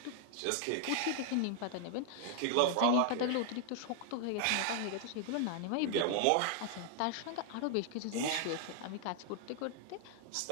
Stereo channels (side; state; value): both; different; correlation 0.00